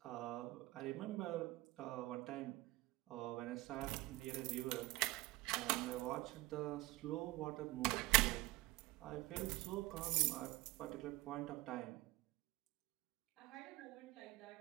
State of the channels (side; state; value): left; quieter; 19.8 dB